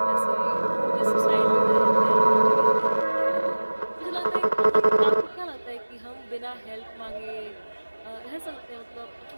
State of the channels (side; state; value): both; inverted; correlation -1.00